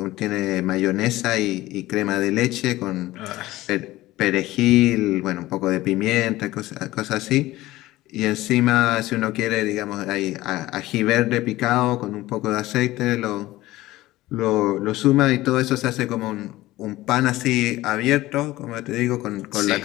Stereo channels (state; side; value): quieter; right; 17.2 dB